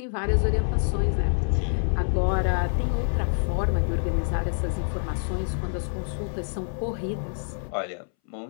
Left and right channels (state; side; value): silent; right; 61 dB below the other